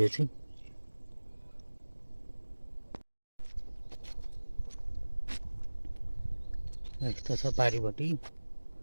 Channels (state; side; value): inverted; both; correlation -1.00